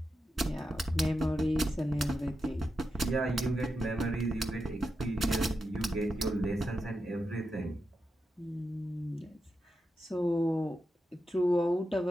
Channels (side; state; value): both; normal; correlation 0.88